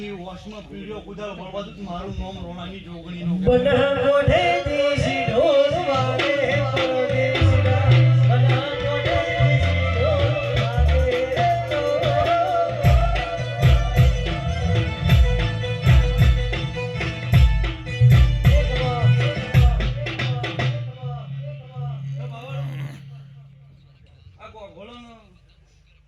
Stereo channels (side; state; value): both; identical; correlation 1.00